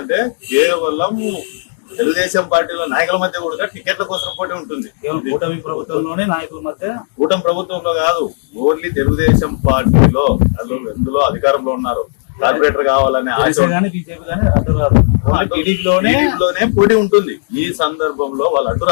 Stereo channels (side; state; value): right; silent; digital silence